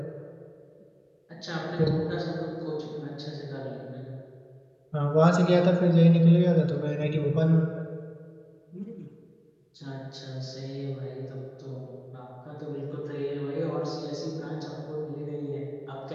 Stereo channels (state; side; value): identical; both; correlation 1.00